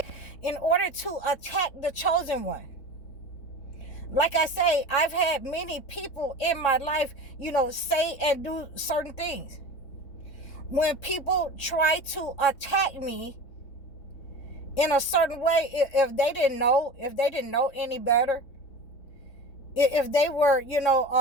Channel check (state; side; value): late; right; 3.7 ms